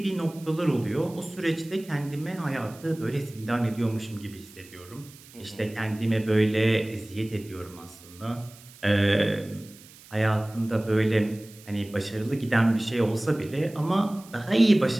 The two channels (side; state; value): right; noise; hiss, 22 dB below the sound